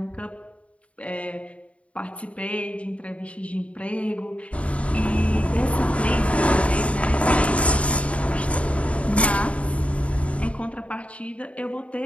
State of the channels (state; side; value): late; right; 0.064 ms